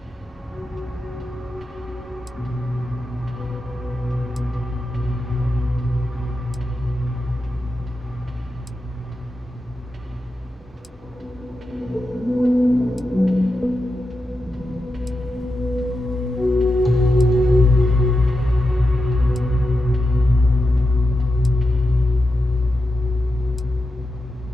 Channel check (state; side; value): normal; both; correlation 0.88